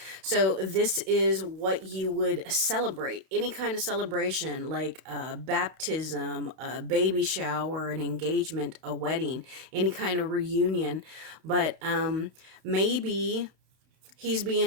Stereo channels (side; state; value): left; late; 31 ms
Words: So this is what you would celebrate. Any kind of celebration, like a baptism, a baby shower, an engagement, a wedding, any kind of reunion. But maybe he's